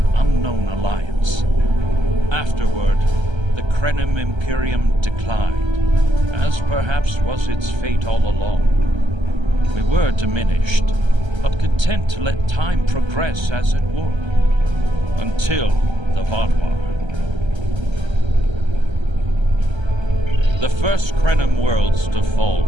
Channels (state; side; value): late; left; 1.3 ms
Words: unknown alliance. Afterward, the Krenim Imperium declined, as perhaps was its fate all along. We were diminished, but content to let time progress as it would. Until the Vaadwaur. The first Krenim worlds to fall